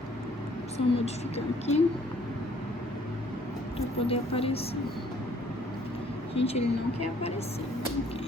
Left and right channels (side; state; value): both; normal; correlation 0.60